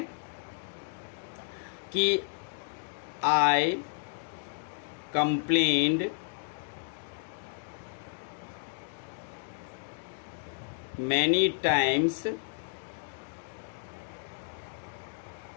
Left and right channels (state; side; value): silent; right; digital silence